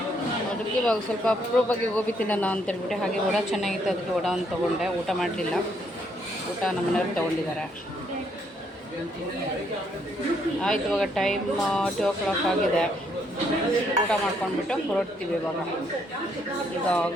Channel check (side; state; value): both; normal; correlation 0.72